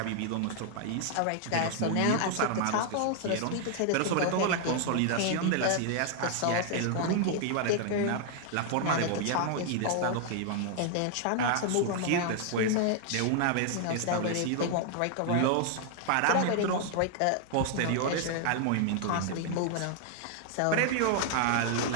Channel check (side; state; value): both; different; correlation 0.00